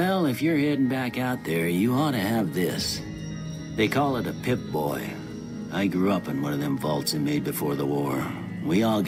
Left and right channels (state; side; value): identical; both; correlation 1.00